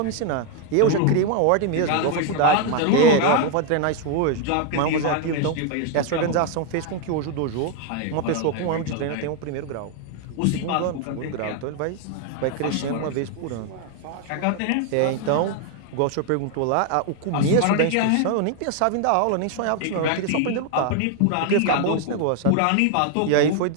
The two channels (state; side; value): different; both; correlation 0.01